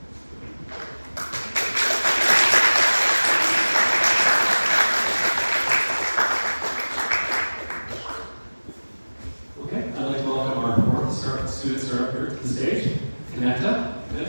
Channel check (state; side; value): inverted; both; correlation -1.00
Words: Okay, I'd like to welcome our fourth student startup here to the stage, CONNECTA.